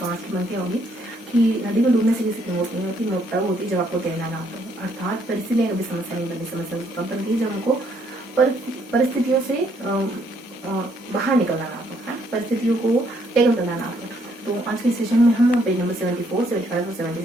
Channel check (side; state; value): both; normal; correlation 0.69